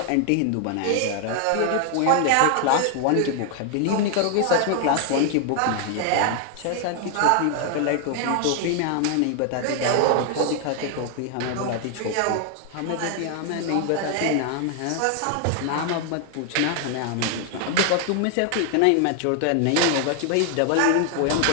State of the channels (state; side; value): different; both; correlation 0.00